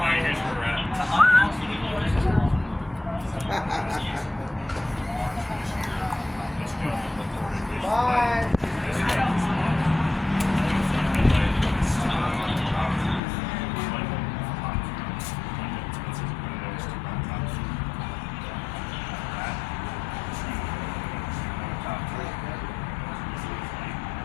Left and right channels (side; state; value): right; drops out; at 13.2 s